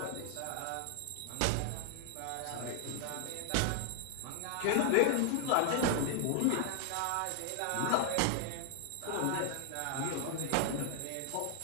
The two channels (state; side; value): different; both; correlation 0.00